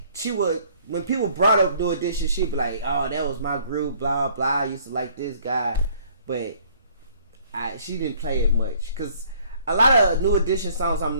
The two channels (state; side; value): inverted; both; correlation -0.59